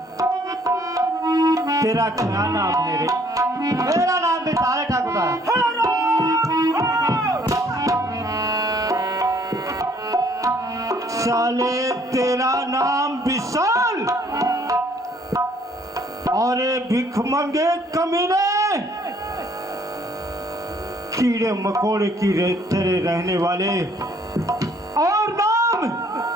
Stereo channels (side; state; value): both; normal; correlation 0.62